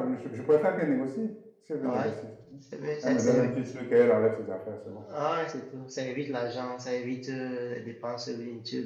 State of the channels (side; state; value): both; identical; correlation 1.00